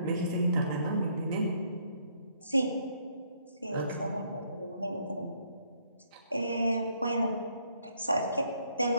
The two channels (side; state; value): both; inverted; correlation -0.68